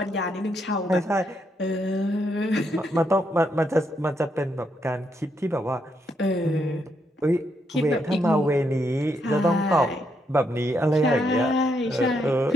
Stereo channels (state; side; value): normal; both; correlation 0.78